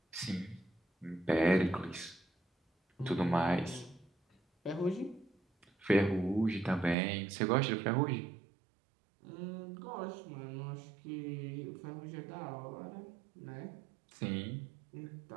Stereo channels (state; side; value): drops out; left; at 7.0 s